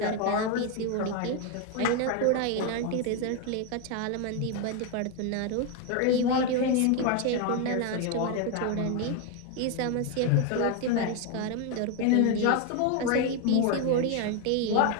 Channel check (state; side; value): different; both; correlation 0.01